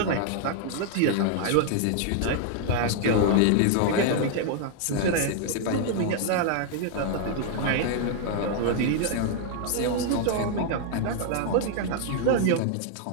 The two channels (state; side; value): different; both; correlation 0.00